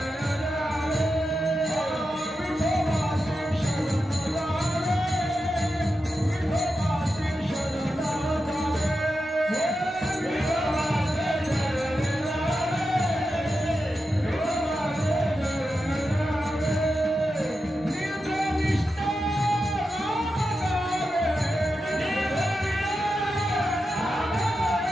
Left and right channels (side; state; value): both; normal; correlation 0.89